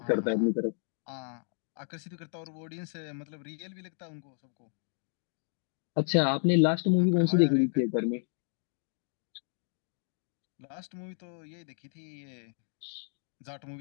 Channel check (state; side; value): silent; right; 56 dB below the other